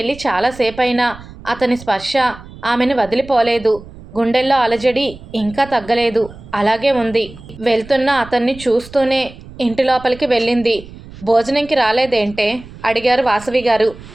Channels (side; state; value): right; noise; rumble, 18 dB below the sound